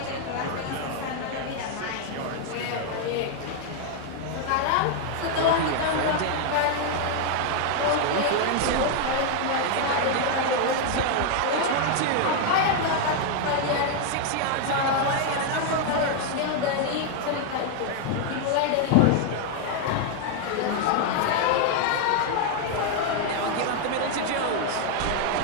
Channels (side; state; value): both; different; correlation 0.00